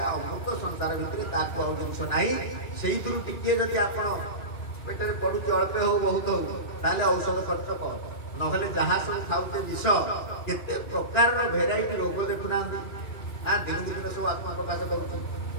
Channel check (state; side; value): late; right; 2.1 ms